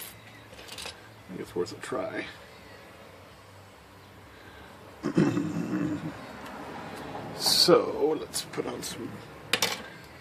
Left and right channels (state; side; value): identical; both; correlation 1.00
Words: think it's worth a try. So let's put on some